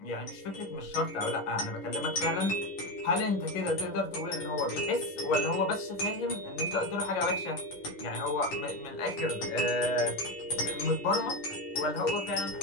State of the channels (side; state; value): right; late; 11 ms